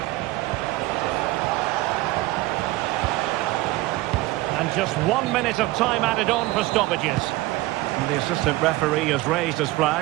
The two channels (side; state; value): left; quieter; 18.9 dB